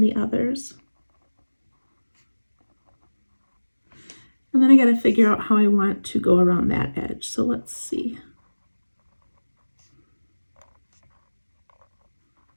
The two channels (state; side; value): inverted; both; correlation -1.00